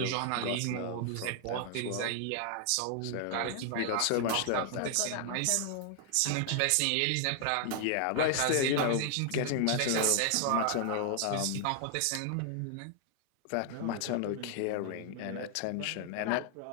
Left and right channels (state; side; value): different; both; correlation 0.00